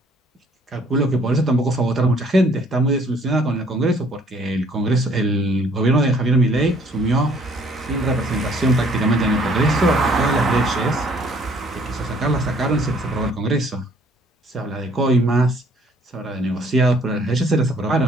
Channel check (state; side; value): normal; both; correlation 0.60